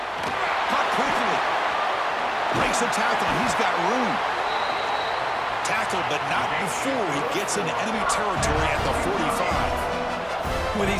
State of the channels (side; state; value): both; identical; correlation 1.00